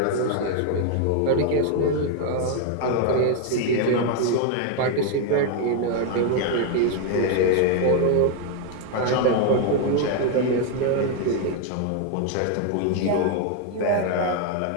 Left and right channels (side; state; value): both; different; correlation 0.00